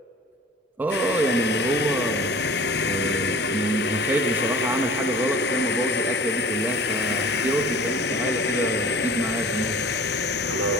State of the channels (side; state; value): both; normal; correlation 0.44